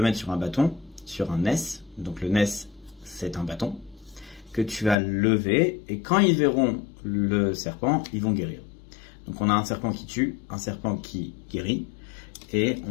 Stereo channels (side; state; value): right; drops out; at 5.0 s